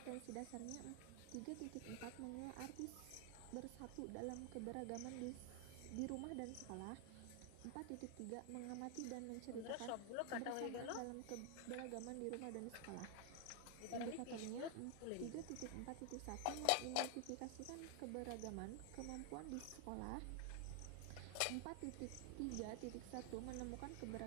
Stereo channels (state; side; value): different; both; correlation 0.00